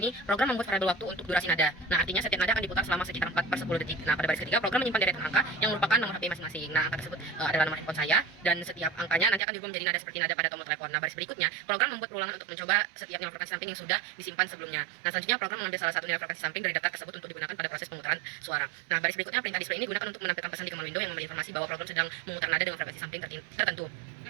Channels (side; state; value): left; drops out; at 9.4 s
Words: program membuat variabel waktu untuk durasi nada. Nah, artinya setiap nada akan diputar selama sekitar 4/10 detik. Nah, pada baris ketiga, program menyimpan deretan angka yang merupakan nomor HP masing-masing. Nah, angka tersebut adalah nomor handphone saya, dan setiap angkanya nanti akan diubah menjadi nada seperti nada pada tombol telepon. Nah, baris berikutnya, program membuat perulangan untuk mencoba setiap nilai frekuensi sampling yang sudah disimpan sebelumnya. Nah, selanjutnya program mengambil salah satu nilai frekuensi sampling dari daftar tersebut untuk digunakan pada proses pemutaran suara. Nah, baris berikutnya, perintah display ini digunakan untuk menampilkan pesan di command window yang memberi informasi bahwa program sedang memutar nada dengan frekuensi sampling tertentu.